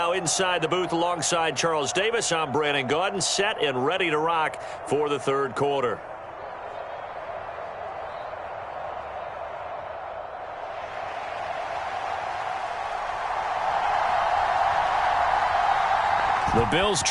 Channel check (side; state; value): both; identical; correlation 1.00